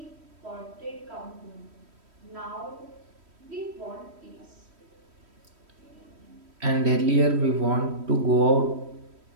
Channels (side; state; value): left; late; 3.1 ms